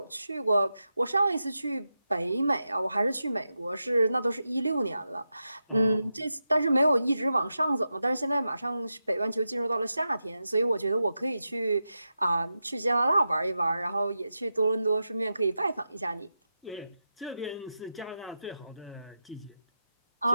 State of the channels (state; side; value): inverted; both; correlation -0.90